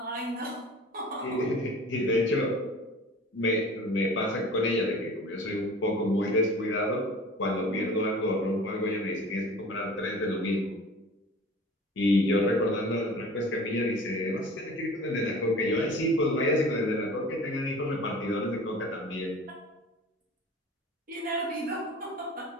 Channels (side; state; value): both; normal; correlation 0.42